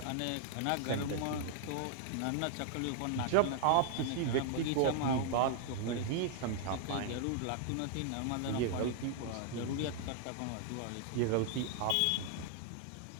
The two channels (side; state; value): both; different; correlation 0.00